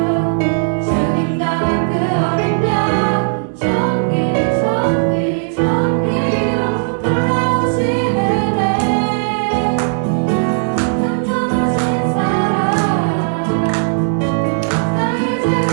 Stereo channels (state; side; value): silent; left; digital silence